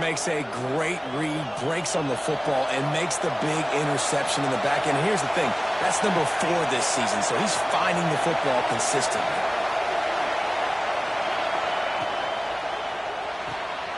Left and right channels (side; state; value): both; identical; correlation 1.00